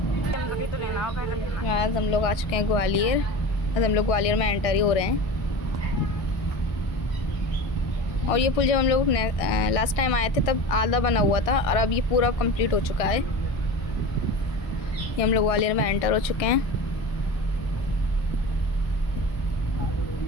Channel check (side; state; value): right; late; 1.6 ms